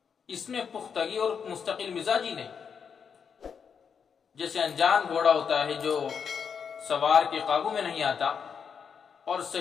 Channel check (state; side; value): quieter; right; 6.7 dB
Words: اس میں پختگی اور مستقل مزاج ہی نہیں۔ جیسے انجان گھوڑا ہوتا ہے جو سوار کے قابو میں نہیں آتا اور